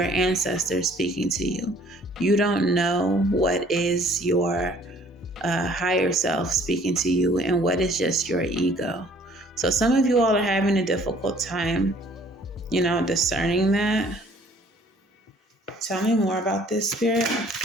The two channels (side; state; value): both; normal; correlation 0.57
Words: ancestor speaking to you. You don't know what is your higher self speaking to you and what is just your ego. So some of you all are having a difficult time, discerning that. Tell me more about this, Spirit.